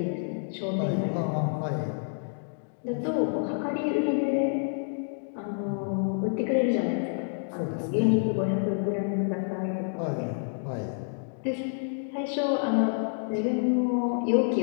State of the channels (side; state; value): right; silent; digital silence